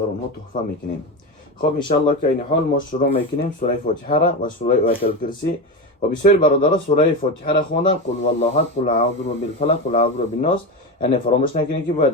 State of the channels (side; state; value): both; normal; correlation 0.18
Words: اونها تحفه میکنیم. خب انشاءالله که این حال ما شروع میکنیم سوره فاتحه را و سوره آیت الکرسی و بسیاری برادران سوره فاتحه را خوندن قل والله احد قل اعوذ بالفلق قل اعوذ بالناس، یعنی فراموش نکنید که